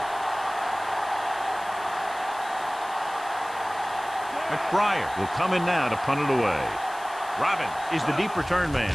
McBriar will come in now to punt it away. Robbins is the deep return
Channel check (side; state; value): left; noise; hiss, 19 dB below the sound